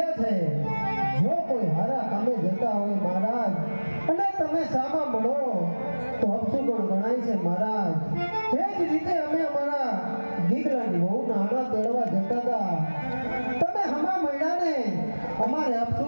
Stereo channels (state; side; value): inverted; both; correlation -1.00